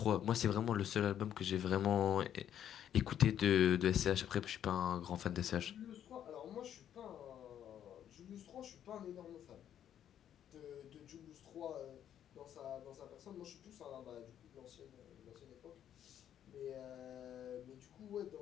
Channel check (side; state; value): right; quieter; 10.1 dB